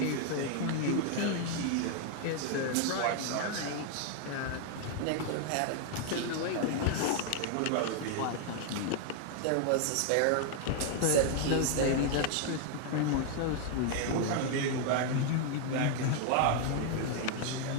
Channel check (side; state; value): both; different; correlation 0.00